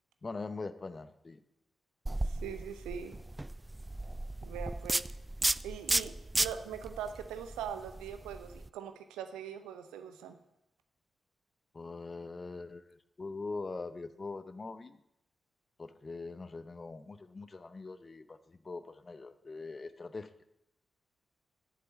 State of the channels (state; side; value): normal; both; correlation 0.90